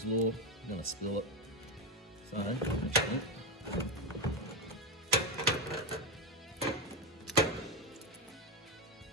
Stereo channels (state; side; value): normal; both; correlation 0.09